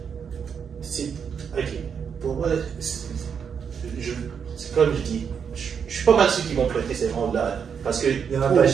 Ok. Pour moi, c'est comme je dis, je suis pas mal sûr qu'ils vont prêter ces rangs-là. Parce que Il y en a pas le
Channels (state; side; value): quieter; left; 7.0 dB